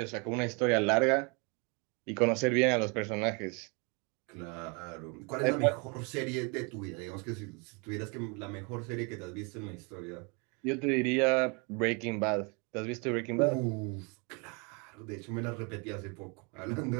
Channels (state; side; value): quieter; left; 32.8 dB